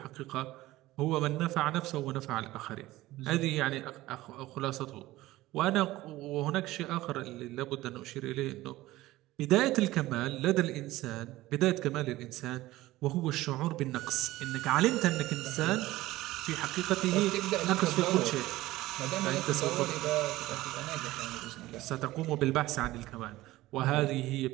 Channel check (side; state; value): left; quieter; 17.3 dB